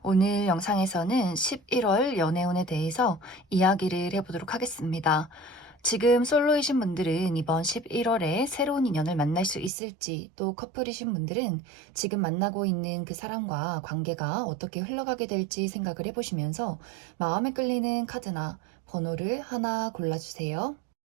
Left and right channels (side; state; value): left; drops out; at 9.7 s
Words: 오늘 영상에서는 11월 연애운에 대해서 이야기를 해보도록 하겠습니다. 지금 솔로이신 분들은 이번 11월에 새로운 인연을 만날 수 있을지, 또 커플이신 분들은 지금 만나고 있는 그 사람과 관계가 어떻게 흘러가게 될지 생각을 해보시면서 마음에 끌리는 카드나 번호를 하나 골라주세요.